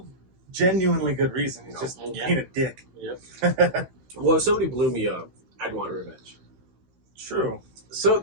genuinely good reason. He's just being a dick. Yep. Well, if somebody blew me up, I'd want revenge. True. So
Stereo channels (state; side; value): late; left; 16 ms